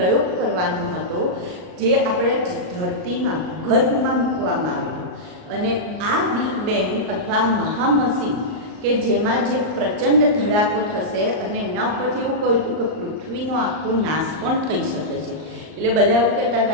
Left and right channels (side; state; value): left; late; 38 ms